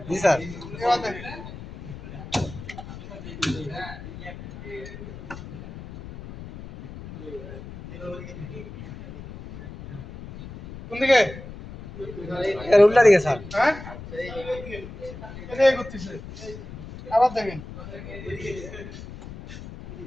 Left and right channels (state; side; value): noise; left; rumble, 13 dB below the sound